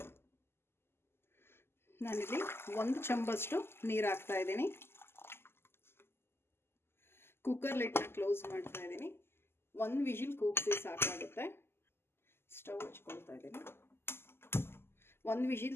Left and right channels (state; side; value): late; right; 0.12 ms